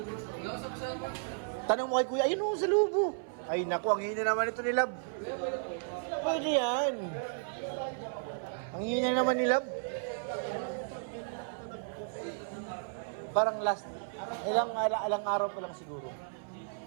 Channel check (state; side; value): silent; left; 55 dB below the other